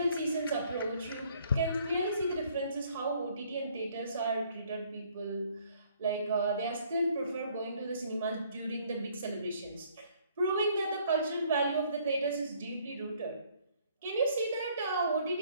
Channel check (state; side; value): inverted; both; correlation -0.62